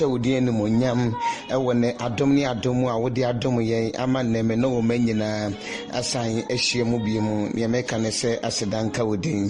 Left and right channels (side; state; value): both; identical; correlation 1.00